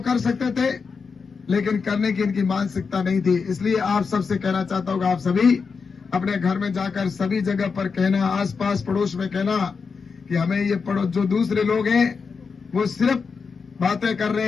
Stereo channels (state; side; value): quieter; right; 5.3 dB